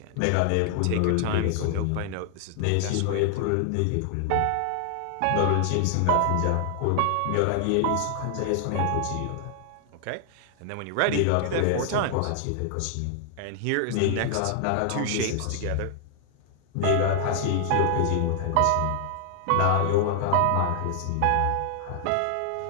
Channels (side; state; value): both; different; correlation 0.00